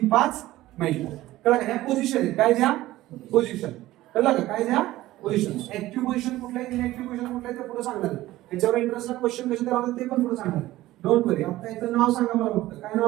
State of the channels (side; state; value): left; quieter; 16.3 dB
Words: 5 मेटा. कळलं का? ह्या पोझिशन आहे. काय द्या? पोझिशन. कळलं का? काय द्या? पोझिशन. ऍक्टिव्ह पोझिशन कुठलं आहे, इनऍक्टिव्ह पोझिशन कुठलं आहे ते पुढे सांगणार. त्याच्यावर इंटरेस्टला क्वेश्चन कसे करावं ते पण पुढे सांगणार. डोंट वरी. आता याचं नाव सांगा मला फक्त. काय